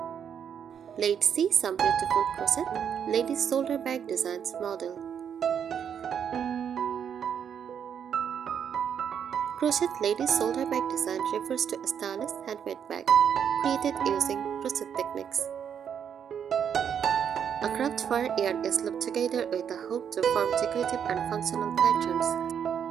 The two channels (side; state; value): left; quieter; 8.1 dB